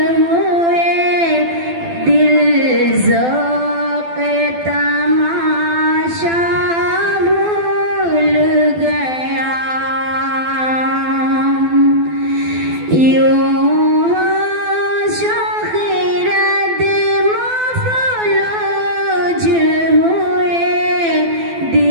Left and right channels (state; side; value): late; left; 12 ms